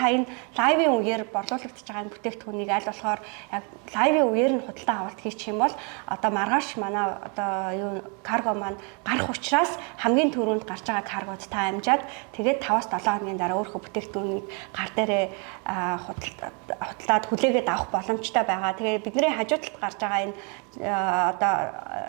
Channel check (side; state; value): left; quieter; 35.6 dB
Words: энэ лайвын үеэр борлуулагдаж байгаа энэ бүтээгдэхүүнийг аль болохоор яг лайвын үеэр нь худалдаа авалт хийчих юм бол одоо маргааш манай одоо юу карго маань гарах учраас хамгийн түрүүнд гарч байгаа каргод та амжаад тэгээд 5-7 хоногийн дараа өөрийнхөө бүтээгдэхүүнийг гар дээрээ худалдаад хүлээгээд авах боломжтой байгаа. Тэгээд бидний хажуу талд гарч байгаа энэ одоо